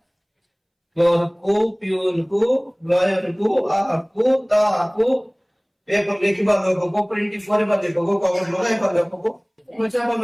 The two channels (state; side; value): identical; both; correlation 1.00